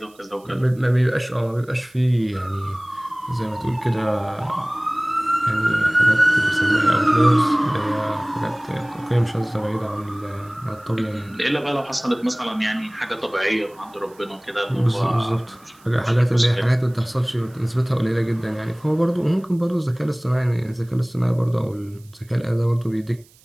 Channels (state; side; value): noise; right; hiss, 29 dB below the sound